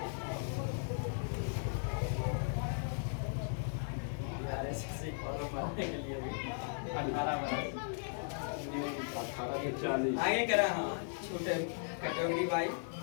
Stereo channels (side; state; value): right; silent; 53 dB below the other